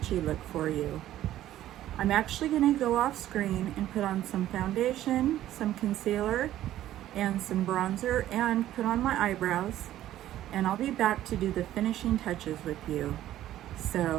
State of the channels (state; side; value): quieter; left; 13.2 dB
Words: look for you. I'm actually going to go off screen and put on some foundation, some concealer, and some bronzer, and put on my eyebrows, and I'll be back to do the finishing touches with you.